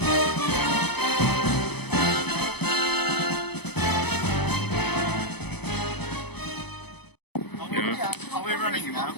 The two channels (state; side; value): late; right; 0.98 ms